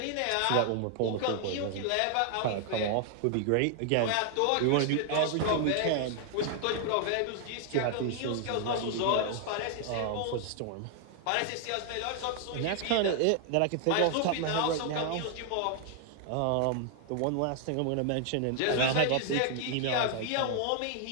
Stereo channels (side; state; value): both; different; correlation 0.00